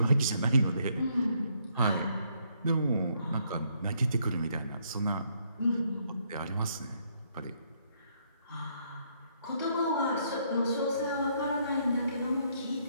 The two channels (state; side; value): inverted; both; correlation -0.71